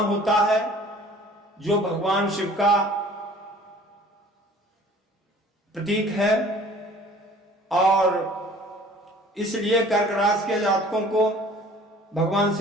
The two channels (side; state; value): both; normal; correlation 0.50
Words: है, जो भगवान शिव का प्रतीक है। और इसलिए कर्क राशि के जातकों को भगवान